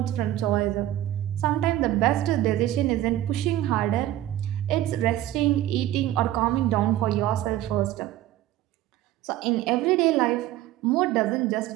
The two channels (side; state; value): left; quieter; 13.9 dB